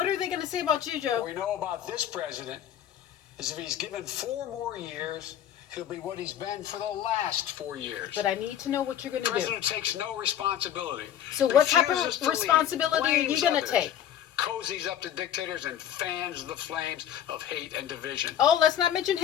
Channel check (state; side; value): quieter; right; 10.4 dB